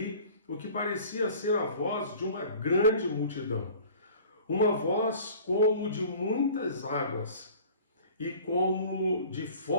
o que parecia ser a voz de uma grande multidão, uma voz como de muitas águas e como de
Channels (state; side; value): inverted; both; correlation -0.46